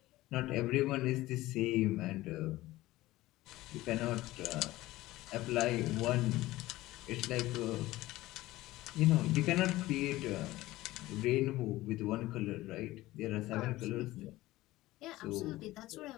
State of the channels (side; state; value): right; quieter; 17.5 dB